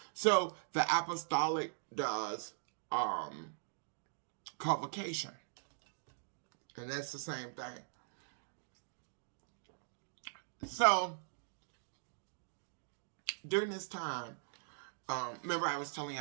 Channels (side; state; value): left; silent; digital silence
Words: So the apostolic does convocation, and that's the same thing. So during this time, remember I was telling